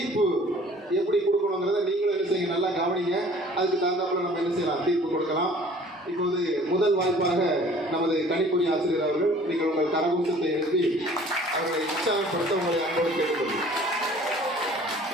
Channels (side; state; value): both; normal; correlation 0.51